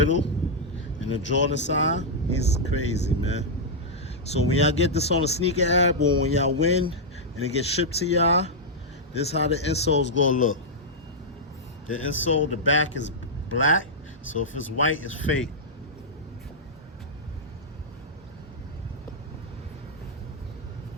and the Jordan sign. He's crazy, man. So when y'all get this on the sneaker app or when y'all win and it gets shipped to y'all, this is how the insole's gonna look. The insole, the back is black, so if it's white, it's fake.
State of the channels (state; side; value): normal; both; correlation -0.06